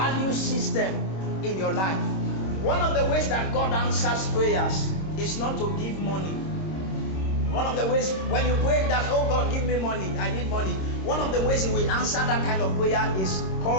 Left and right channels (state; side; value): late; right; 26 ms